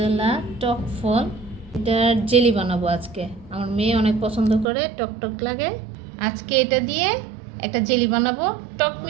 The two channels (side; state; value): left; drops out; at 4.7 s